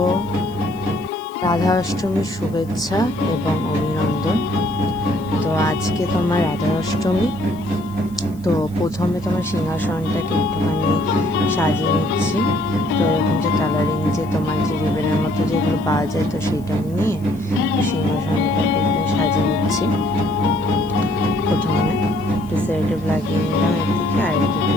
রাধা অষ্টমীর শুভেচ্ছা এবং অভিনন্দন। তো আজকে তোমার রাধা অষ্টমী। তো প্রথমে তোমার সিংহাসনটাকে একটুখানি সাজিয়ে নিচ্ছি। তো এরকম যে কালারিং যে তোমার যে রিবেনের মতো যেগুলো পাওয়া যায়, তো সেটা নিয়ে সিংহাসনটাকে একটু সাজিয়ে নিচ্ছি। প্রথমে একটু সেরেটিভ লাগিয়ে নিলাম একদিকে, আর একদিকে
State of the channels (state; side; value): noise; left; hiss, 26 dB below the sound